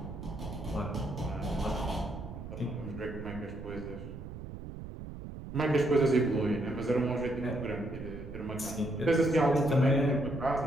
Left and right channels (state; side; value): noise; right; rumble, 10 dB below the sound